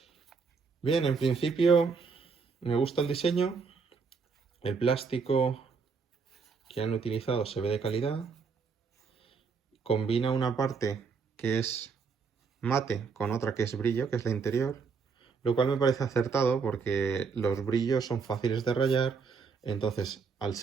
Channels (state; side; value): quieter; left; 5.3 dB